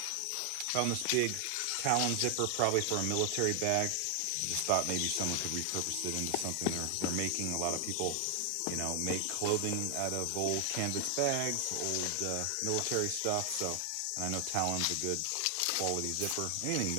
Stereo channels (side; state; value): both; different; correlation 0.00